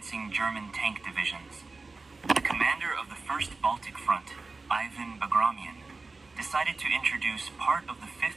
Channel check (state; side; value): quieter; left; 3.8 dB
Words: German tank divisions. The commander of the First Baltic Front, Ivan Bagramian, decided to introduce part of the